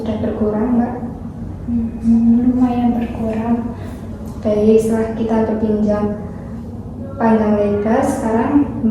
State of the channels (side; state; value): both; identical; correlation 1.00